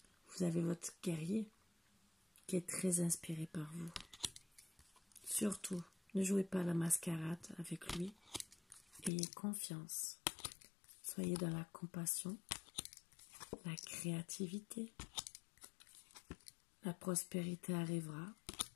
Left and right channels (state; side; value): drops out; right; at 9.1 s